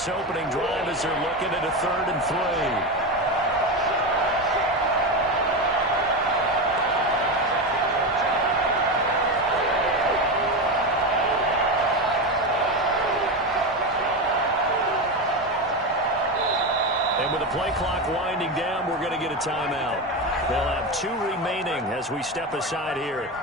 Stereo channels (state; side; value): normal; both; correlation 0.17